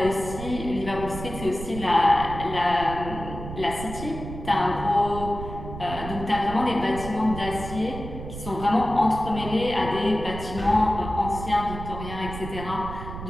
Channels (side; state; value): right; noise; rumble, 9 dB below the sound